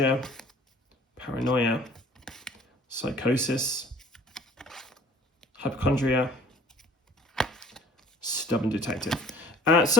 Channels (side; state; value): both; normal; correlation 0.51